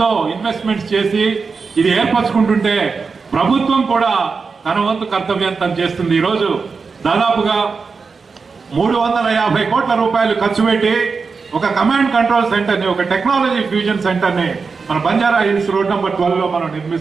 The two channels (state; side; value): quieter; left; 4.9 dB